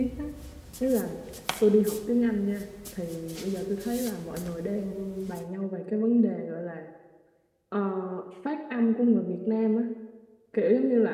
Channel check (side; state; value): both; identical; correlation 1.00